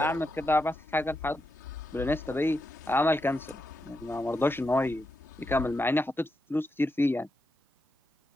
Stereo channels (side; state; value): both; normal; correlation 0.85